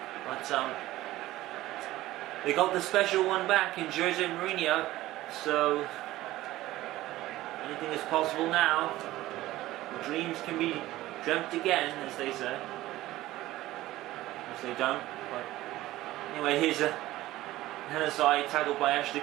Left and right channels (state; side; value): quieter; left; 16.4 dB